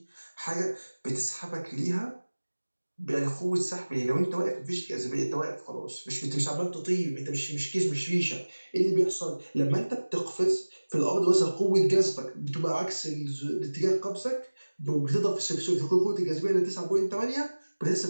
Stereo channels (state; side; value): inverted; both; correlation -1.00